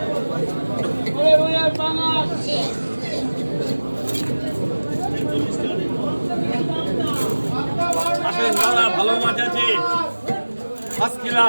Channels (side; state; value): both; inverted; correlation -1.00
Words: আসেন দাদা, ভালো মাছ আছে, ফার্স্ট